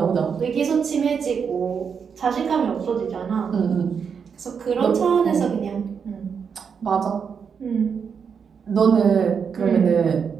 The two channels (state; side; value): quieter; left; 6.5 dB